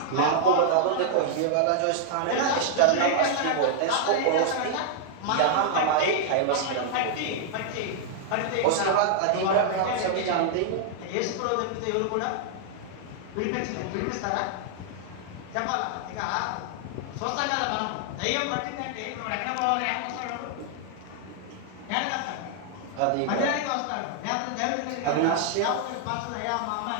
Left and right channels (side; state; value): both; different; correlation -0.01